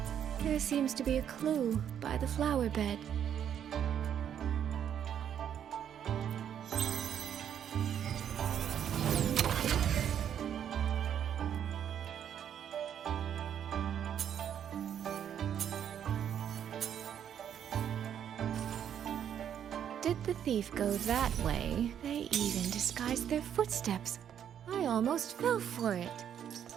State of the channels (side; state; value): left; quieter; 9.2 dB